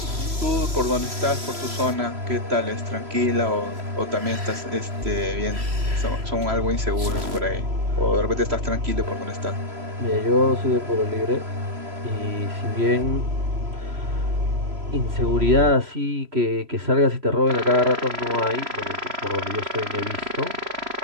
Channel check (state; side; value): late; left; 3.0 ms